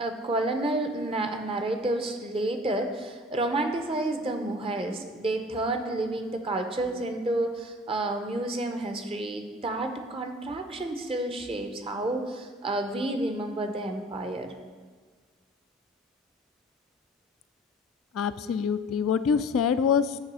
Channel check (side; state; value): both; normal; correlation 0.46